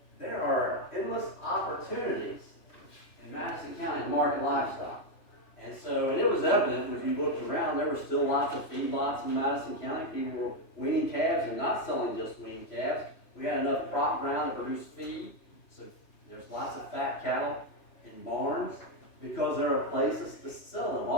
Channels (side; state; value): right; late; 3.0 ms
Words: There are endless opportunities in Madison County to market livestock. And it was evident when you looked around, there were still lots of feedlots in Madison County. People were weaning calves and not selling just weaned calves. We had enough crop ground to produce feed. So there's lots of fat cattle in barns because there are places to sell them.